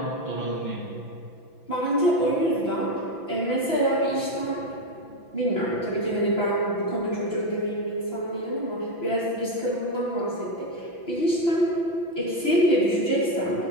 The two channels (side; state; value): right; late; 5.9 ms